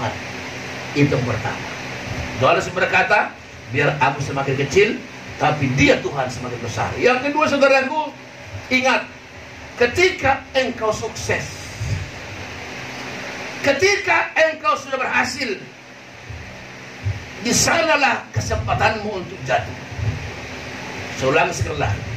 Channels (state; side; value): identical; both; correlation 1.00